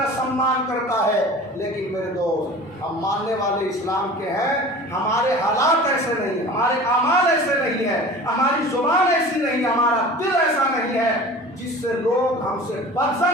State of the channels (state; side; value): normal; both; correlation 0.39